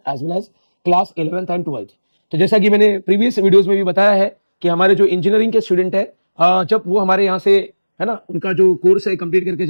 as well as class 11th and 12th। तो जैसा कि मैंने प्रीवियस वीडियोज में भी बताया है कि हमारे जो इंजीनियरिंग के स्टूडेंट है, जब वो हमारे यहाँ से है ना, उनका जो कोर्स है कंप्लीट करके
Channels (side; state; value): both; inverted; correlation -1.00